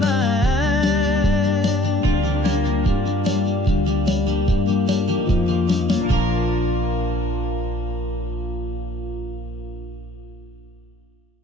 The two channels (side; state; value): both; normal; correlation 0.56